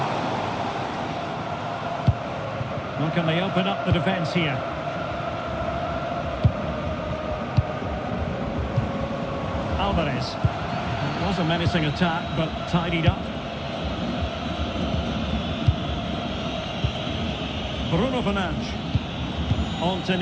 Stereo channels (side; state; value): both; identical; correlation 1.00